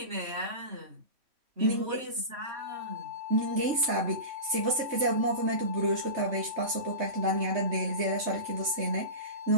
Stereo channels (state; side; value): late; left; 3.1 ms